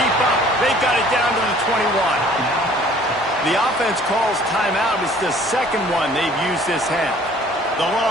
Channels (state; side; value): normal; both; correlation 0.54